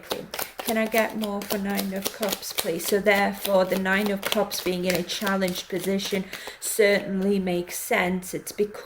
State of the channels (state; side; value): identical; both; correlation 1.00